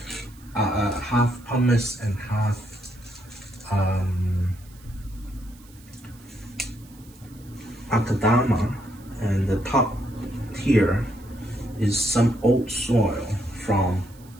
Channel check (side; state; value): right; noise; hiss, 26 dB below the sound